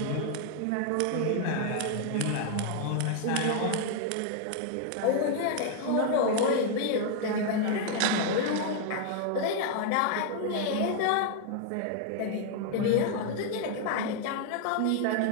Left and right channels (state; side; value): different; both; correlation 0.00